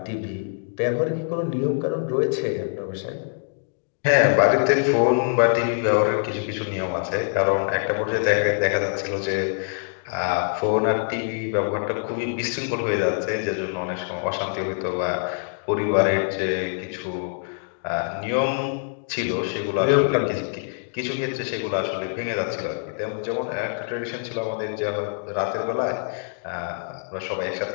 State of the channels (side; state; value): right; silent; digital silence